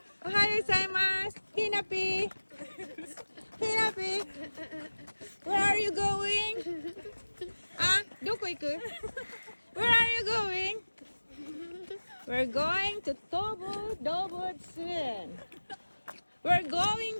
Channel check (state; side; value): inverted; both; correlation -1.00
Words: Ohayo gozaimasu. Hinapi. Hinapi. Where are you going? Doko iku? Where are you going? We're going to Dobotsun. We're